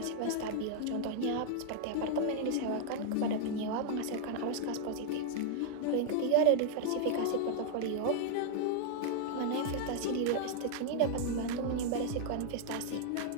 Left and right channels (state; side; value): different; both; correlation 0.00